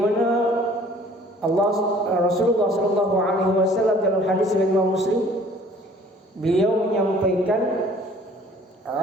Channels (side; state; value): both; normal; correlation 0.53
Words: Rasulullah sallallahu alaihi wasallam dalam hadis riwayat Imam Muslim, beliau menyampaikan,